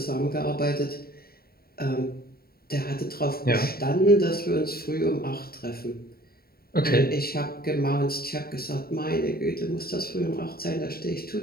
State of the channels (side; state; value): right; late; 0.44 ms